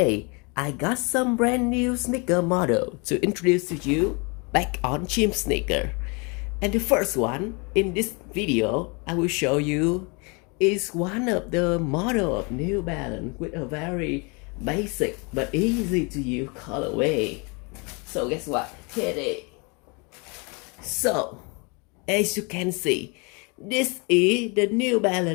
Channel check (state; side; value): quieter; right; 31.0 dB